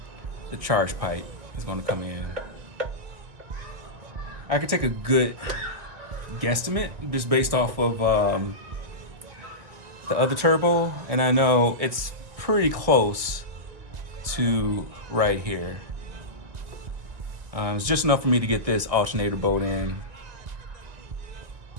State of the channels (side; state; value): left; late; 1.9 ms